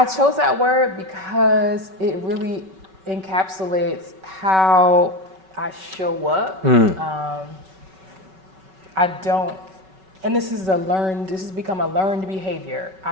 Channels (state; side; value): late; left; 5.3 ms